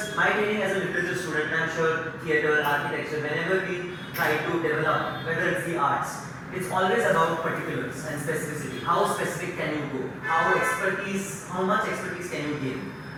my training as a literature student, and I'm sure theatre, architecture, whenever we try to develop, whether it's the arts, it's always about particulars and specificity. How specific can you go? How much expertise can you gain?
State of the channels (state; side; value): identical; both; correlation 1.00